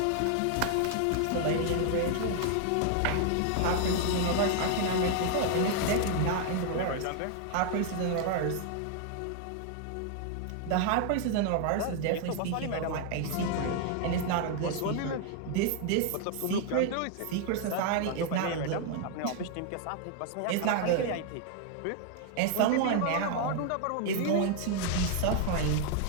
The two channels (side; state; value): both; different; correlation 0.00